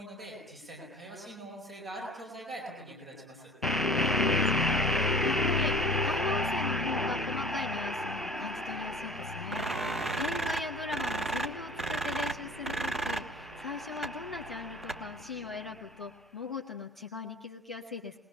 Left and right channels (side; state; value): both; normal; correlation 0.44